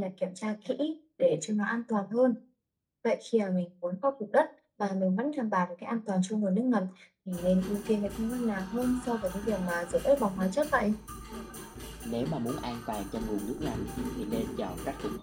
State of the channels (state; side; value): identical; both; correlation 1.00